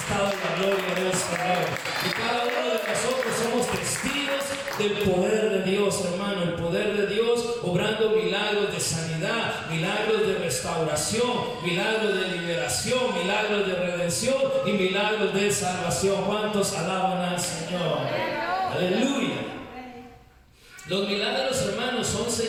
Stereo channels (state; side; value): identical; both; correlation 1.00